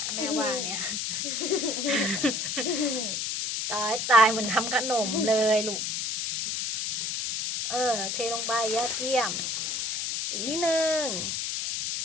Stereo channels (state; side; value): noise; left; hiss, 1 dB below the sound